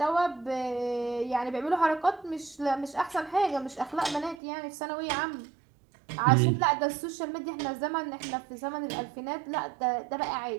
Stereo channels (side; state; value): left; drops out; at 4.4 s